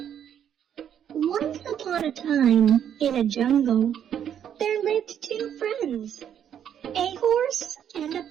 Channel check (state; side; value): quieter; left; 9.3 dB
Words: Once upon a time, in a jungle, there lived two friends, a horse and